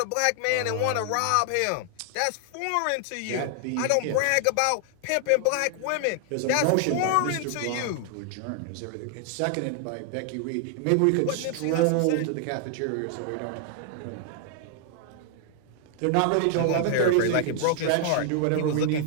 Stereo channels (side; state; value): both; different; correlation 0.00